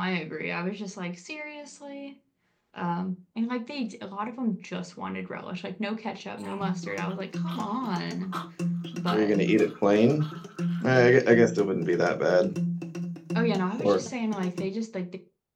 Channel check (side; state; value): both; identical; correlation 1.00